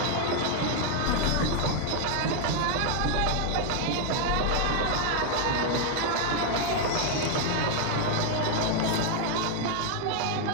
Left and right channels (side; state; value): both; different; correlation 0.01